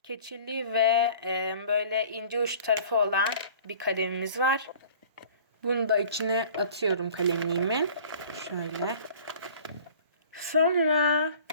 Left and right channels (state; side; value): inverted; both; correlation -0.48